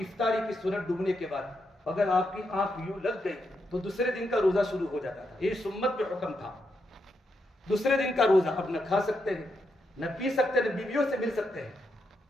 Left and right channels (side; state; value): both; normal; correlation 0.82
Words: کی سنت ڈوبنے کے بعد اگر آپ کی آنکھ یوں لگ گئی تو دوسرے دن کا روزہ شروع ہو جاتا تھا، یہ سنت پہ حکم تھا۔ دوسرے دن کا روزہ، اب نہ کھا سکتے ہیں، نہ پی سکتے ہیں، نہ بیویوں سے مل سکتے ہیں،